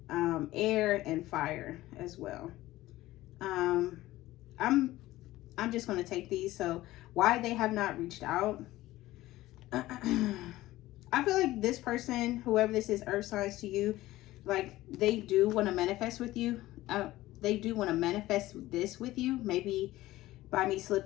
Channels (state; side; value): quieter; right; 16.6 dB